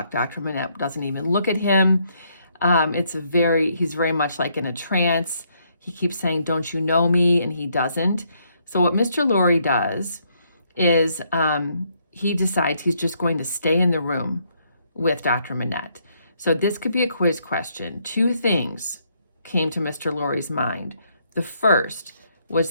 Dr. Manette doesn't even look at him. He's very much like in a trance. He keeps saying, don't you know me? And he doesn't. So what Mr. Lorry does is he decides he's just going to stay in the room with Dr. Manette. So this could be a quiz question. 2 things came to Mr. Lorry's mind. The first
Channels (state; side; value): inverted; both; correlation -0.72